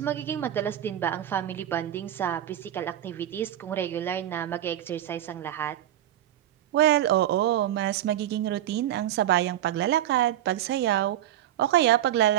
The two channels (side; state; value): left; quieter; 12.0 dB